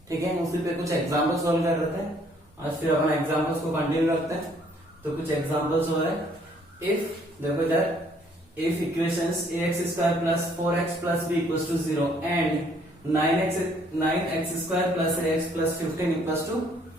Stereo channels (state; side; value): normal; both; correlation 0.63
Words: ठीक है, उसी पे कुछ एग्जांपल सॉल्व कर रहे थे। आज फिर अपन एग्जांपल्स को कंटिन्यू रखते हैं। तो कुछ एग्जांपल्स हो रहे, इफ देखो इधर if equations ax square plus 4x plus b equals to 0 and 9x square plus ax plus 15 equals to